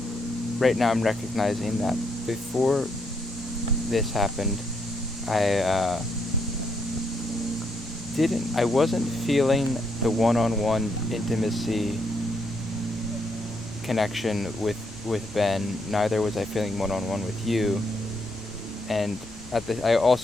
right now I'm recognizing that before this happened, I wasn't feeling the one-on-one intimacy connection with Ben. Neither was I feeling one-on-one with you, and I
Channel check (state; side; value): normal; both; correlation 0.76